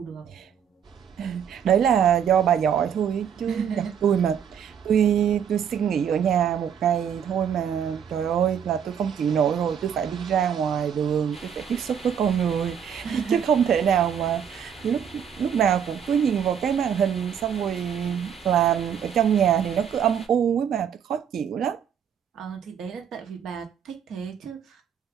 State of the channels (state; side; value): quieter; left; 8.2 dB